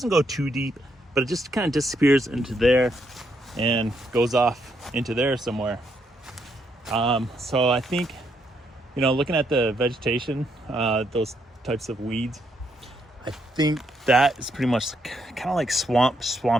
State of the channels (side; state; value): both; normal; correlation 0.76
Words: go too deep, but it just kind of disappears into there and goes off into there somewhere. So I think, you know, looking at the vegetation, those types of weeds, I think that is pretty much kind of like